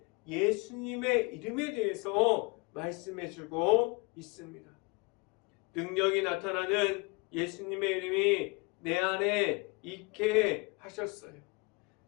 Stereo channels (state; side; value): quieter; right; 28.5 dB